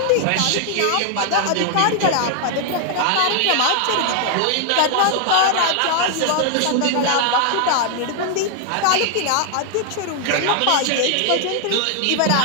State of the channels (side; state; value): both; different; correlation 0.00